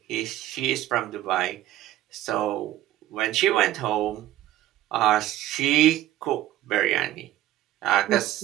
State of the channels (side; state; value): left; quieter; 14.1 dB